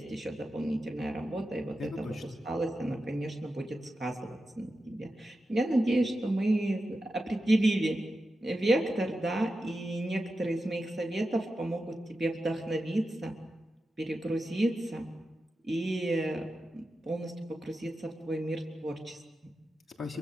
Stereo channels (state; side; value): normal; both; correlation 0.91